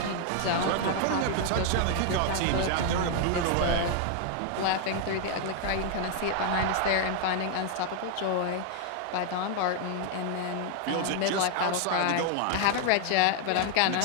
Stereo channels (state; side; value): different; both; correlation 0.00